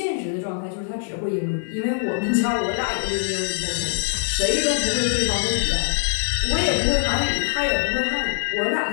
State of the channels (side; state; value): right; silent; digital silence